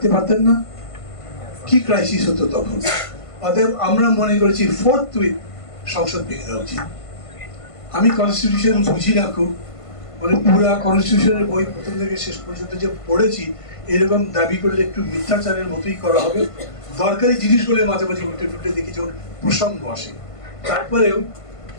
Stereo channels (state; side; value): late; right; 1.5 ms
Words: পারতেন না? কি ক্রাইসিস হতো তখন। অতএব আমরা মনে করেছি ফোর্থউইথ সংসদ ভেঙে দেওয়া উচিত। আমি কনস্টিটিউশন বুঝি না খুব, মানে পুরা কনস্টিটিউশনের বই প্রথম থেকে শেষ পর্যন্ত যে পড়েছি, এরকম দাবি করলে একটু মিথ্যাচারের মতোই করা হবে। দরকারি জিনিসগুলো মাঝে মাঝে উল্টে টুটে দেখি যখন প্রসঙ্গ আসে। তারপরেও